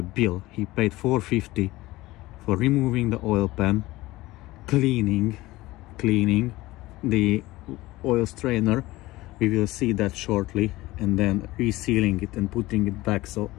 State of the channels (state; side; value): quieter; right; 18.8 dB